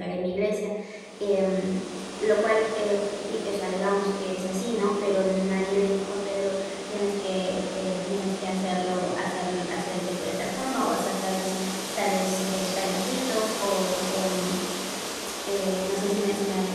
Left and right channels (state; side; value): identical; both; correlation 1.00